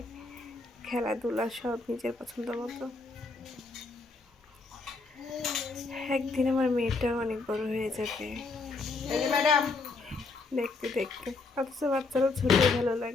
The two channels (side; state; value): right; quieter; 3.9 dB